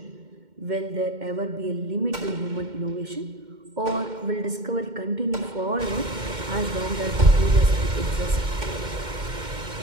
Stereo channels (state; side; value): late; left; 2.1 ms